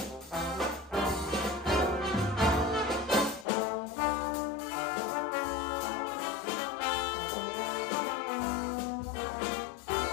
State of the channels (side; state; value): right; drops out; at 3.5 s